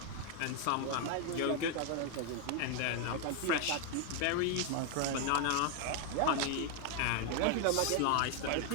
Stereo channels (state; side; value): different; both; correlation 0.01